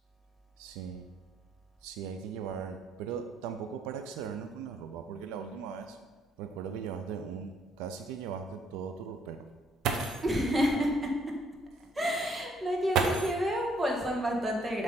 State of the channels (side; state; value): both; normal; correlation 0.67